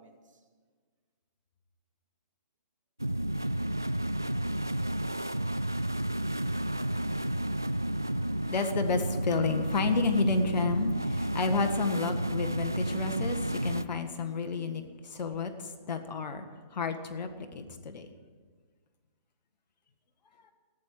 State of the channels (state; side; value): inverted; both; correlation -0.69